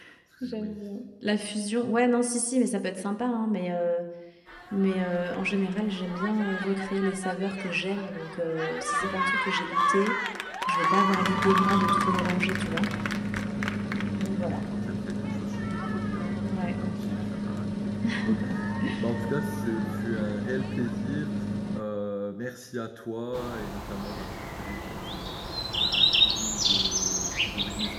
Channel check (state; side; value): identical; both; correlation 1.00